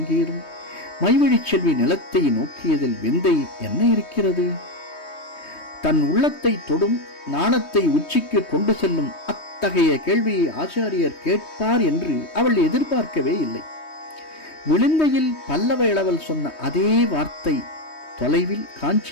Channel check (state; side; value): late; right; 3.2 ms